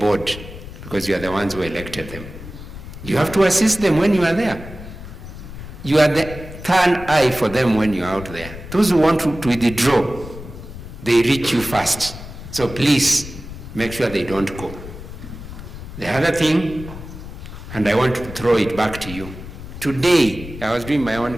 because you are the ones who elected them. You have to assist them when you are there. You are the third eye for them when you are out there. Those who want to withdraw, they reach you first. So please make sure they don't go. The other thing, and I want to throw it back to you. Today, I was doing my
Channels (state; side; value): noise; left; rumble, 12 dB below the sound